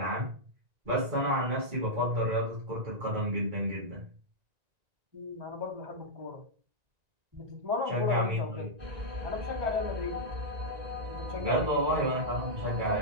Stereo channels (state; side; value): late; left; 1.9 ms